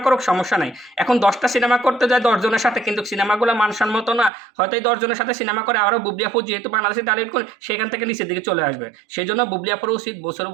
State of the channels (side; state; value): left; drops out; at 4.3 s